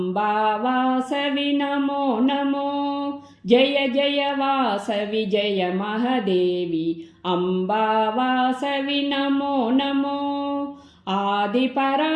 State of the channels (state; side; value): identical; both; correlation 1.00